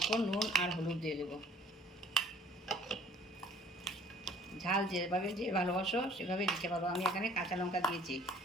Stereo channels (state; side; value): normal; both; correlation 0.54